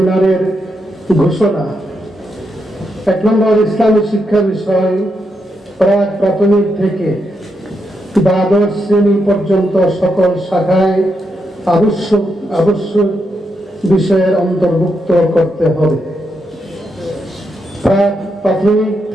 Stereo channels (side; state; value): both; normal; correlation 0.82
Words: ঘোষণা। 1 নম্বর, ইসলামী শিক্ষা বিষয় প্রাক প্রাথমিক থেকে দ্বাদশ শ্রেণী পর্যন্ত সকল শাখায় আবশ্যক বিষয়ের অন্তর্ভুক্ত করতে হবে। প্রাক প্রাথমিক